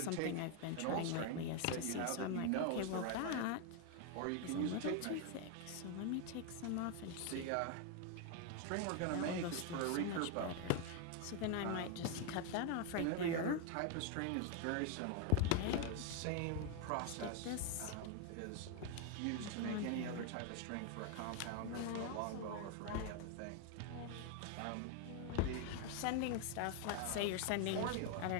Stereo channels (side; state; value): both; different; correlation 0.01